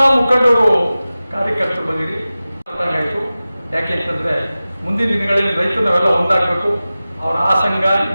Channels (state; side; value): inverted; both; correlation -0.96